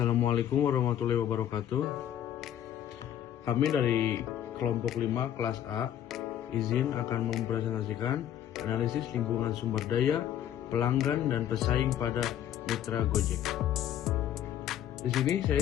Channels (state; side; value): quieter; right; 10.9 dB